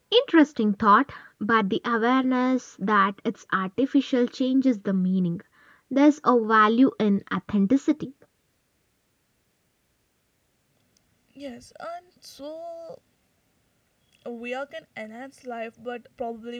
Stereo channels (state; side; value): identical; both; correlation 1.00